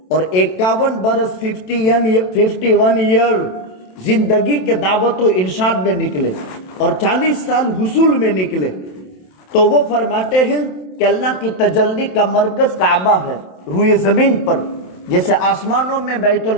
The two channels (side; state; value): right; late; 27 ms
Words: اور 51 برس 51 ایئر زندگی کے دعوت و ارشاد میں نکلے، اور 40 سال حصول میں نکلے۔ تو وہ فرماتے ہیں کہ اللہ کی تجلی کا مرکز کعبہ ہے، روئے زمین پر، جیسے آسمانوں میں بیت